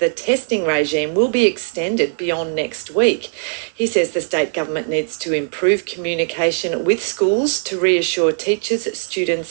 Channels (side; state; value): left; silent; digital silence